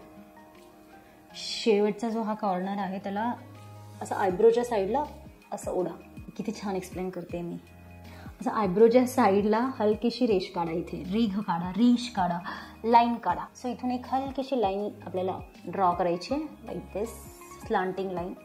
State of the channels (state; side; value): identical; both; correlation 1.00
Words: शेवटचा जो हा कॉर्नर आहे त्याला असं आयब्रोच्या साईडला असं ओढा. किती छान एक्सप्लेन करते मी. असं आयब्रोच्या साईडला हलकीशी रेष काढा, इथे रेघ काढा, रेष काढा, लाईन काढा. सो इथून एक हलकीशी लाईन आपल्याला ड्रॉ करायची आहे, लाईक दिस, स्लांटिंग लाईन